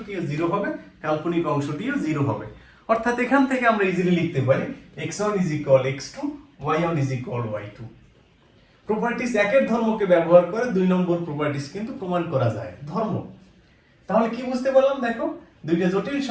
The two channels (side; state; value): both; identical; correlation 1.00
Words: 0 হবে, কাল্পনিক অংশটিও 0 হবে। অর্থাৎ এখান থেকে আমরা ইজিলি লিখতে পারি x1 = x2, y1 = y2। Properties একের ধর্মকে ব্যবহার করে 2 নম্বর প্রপার্টিস কিন্তু প্রমাণ করা যায়, ধর্ম। তাহলে কি বুঝতে পারলাম? দেখো, দুইটা জটিল